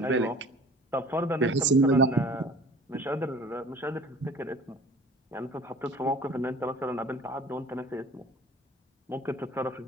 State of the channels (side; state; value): both; normal; correlation 0.46